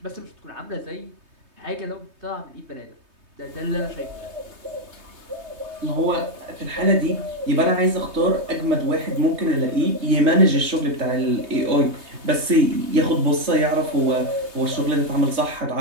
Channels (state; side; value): late; left; 3.2 ms